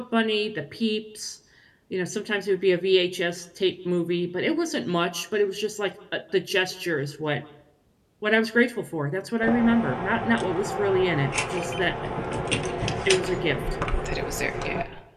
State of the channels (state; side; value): identical; both; correlation 1.00